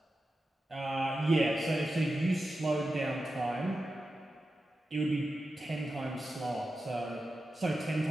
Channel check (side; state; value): both; normal; correlation 0.91